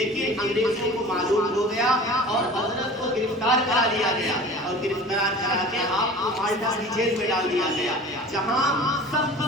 انگریزوں کو معلوم ہو گیا اور حضرت کو گرفتار کرا لیا گیا اور گرفتار کرا کے آپ کو مالٹا کی جیل میں ڈال دیا گیا، جہاں سخت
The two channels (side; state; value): both; normal; correlation 0.40